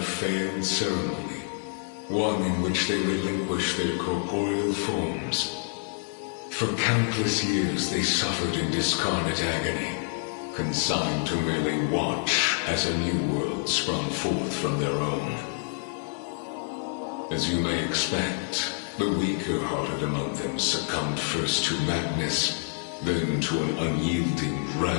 failed ceremony, one in which they relinquished their corporeal forms. For countless years they suffered in discarnate agony, consigned to merely watch as a new world sprung forth from their own. As you may expect, the weaker-hearted among them succumbed first to madness, then to an unyielding,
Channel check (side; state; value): right; silent; digital silence